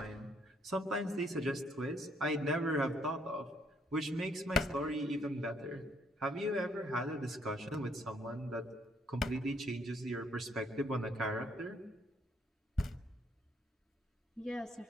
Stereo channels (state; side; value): normal; both; correlation 0.68